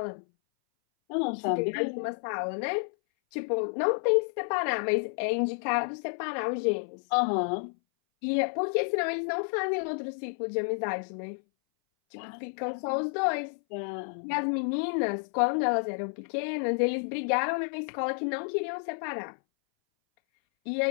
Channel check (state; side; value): silent; right; 58 dB below the other